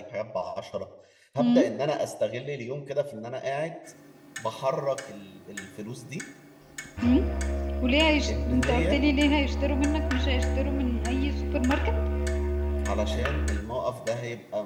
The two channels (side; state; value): both; identical; correlation 1.00